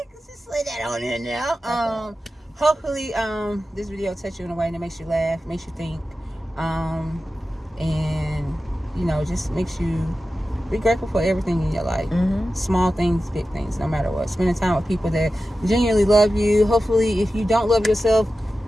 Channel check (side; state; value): both; normal; correlation 0.93